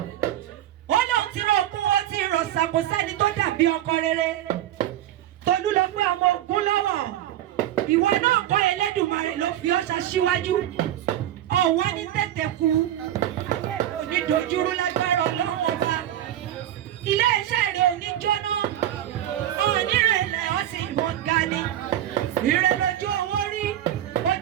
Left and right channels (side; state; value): left; quieter; 12.2 dB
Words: Ó lóun ti rọ ogún ó ti rọ̀ ṣàkó sẹ́ni tó dàbí ọkọ rere. Tolú lọ pé ọmọ ogun lọ́wọ́. Ìwọ náà kọ́ Ẹlẹ́dùmarè ló fi ọ́ ṣaṣíwájú. Ọ̀wá ní tètè kú. Onídojúrú lágbára Ọlọ́run ọba. Ilé iṣẹ́ rẹ̀ ò ní jóná. Onírẹ̀lẹ̀ ó sì mọ̀ ga ni. Ire lójú owó rí.